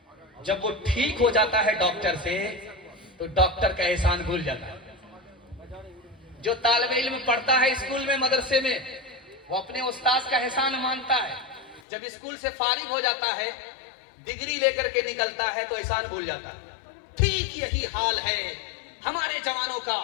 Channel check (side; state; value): right; drops out; at 11.8 s